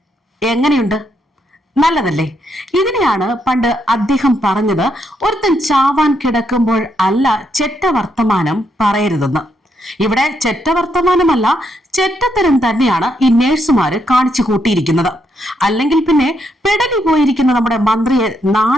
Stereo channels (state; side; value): normal; both; correlation 0.77